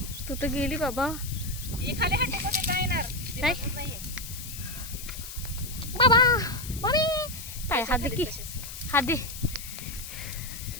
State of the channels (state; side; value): noise; left; hiss, 10 dB below the sound